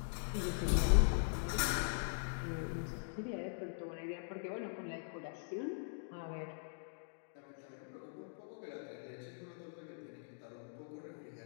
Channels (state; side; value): silent; right; digital silence